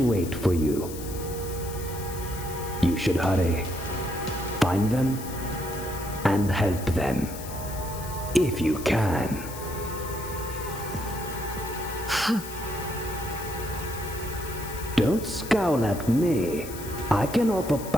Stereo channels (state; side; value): noise; left; hiss, 13 dB below the sound